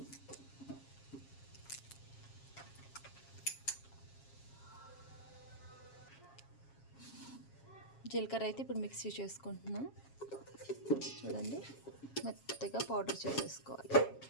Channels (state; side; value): late; right; 7.3 ms